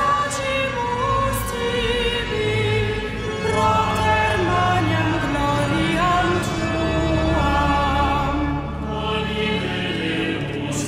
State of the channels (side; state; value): both; identical; correlation 1.00